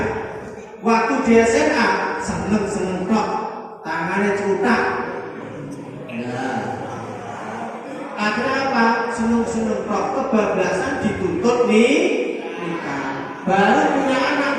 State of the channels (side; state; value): both; identical; correlation 1.00